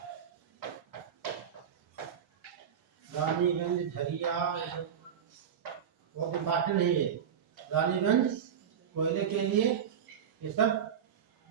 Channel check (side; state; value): left; quieter; 8.3 dB